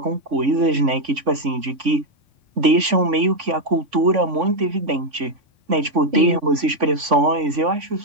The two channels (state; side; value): late; left; 3.5 ms